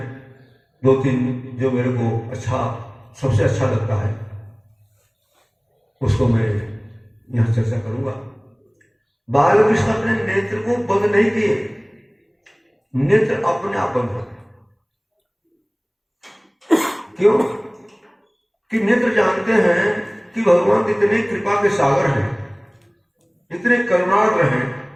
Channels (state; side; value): identical; both; correlation 1.00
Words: 2-3 जो मेरे को सबसे अच्छा लगता है उसको मैं यहां चर्चा करूंगा। बालकृष्ण अपने नेत्र को बंद नहीं किए, नेत्र अपने आप बंद होते। क्यों? कि नेत्र जानते हैं कि भगवान इतने कृपा के सागर हैं, इतने करुणार्द्र हैं